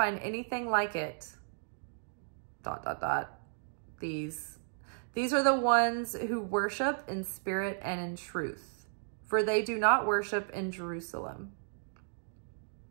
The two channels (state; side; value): silent; left; digital silence